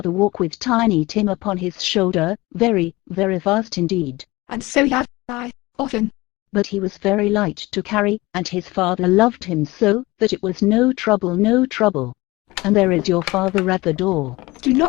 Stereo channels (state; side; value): quieter; right; 20.9 dB